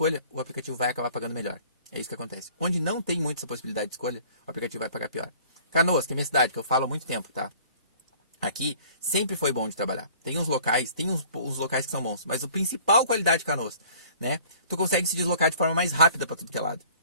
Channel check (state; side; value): inverted; both; correlation -0.51